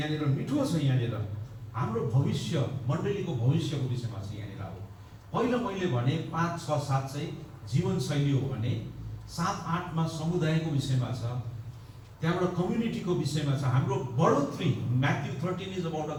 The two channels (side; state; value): both; identical; correlation 1.00